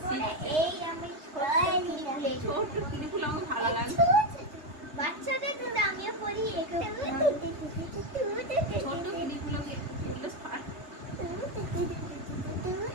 ছোট ক্লিপগুলো আমার ভালো লাগে। বাচ্চাদের কিন্তু আমিও পড়ি ছোট ক্লিপগুলোকে চুলটা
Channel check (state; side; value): late; left; 3.3 ms